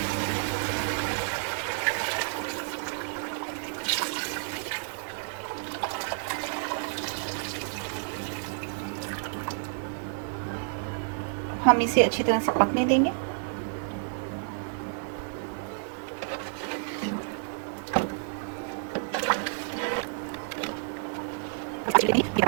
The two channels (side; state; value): left; silent; digital silence